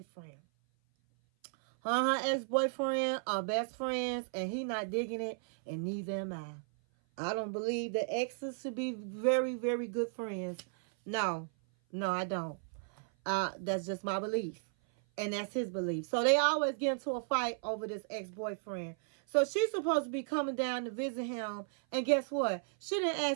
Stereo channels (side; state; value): left; silent; 55 dB below the other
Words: Her and her ex-boyfriend are best friends, and he not digging it, and neither am I. I don't believe that exes should be very, very good friends. No, I don't. That's just my belief. And that's his belief. So they always get into a fight over this ex-boyfriend. So she's supposed to be coming down to visit him. And guess what? She didn't